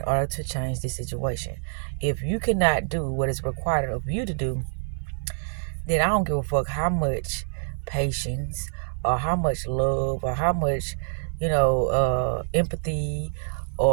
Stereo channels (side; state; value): left; silent; 56 dB below the other